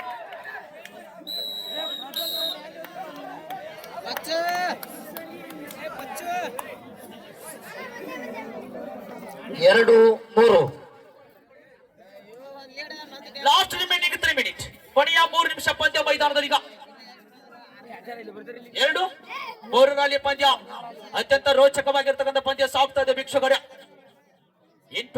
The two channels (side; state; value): both; identical; correlation 1.00